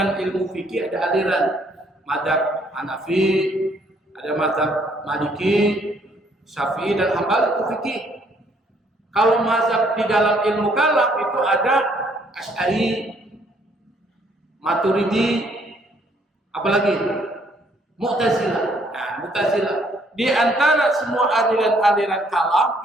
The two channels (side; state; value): both; normal; correlation 0.66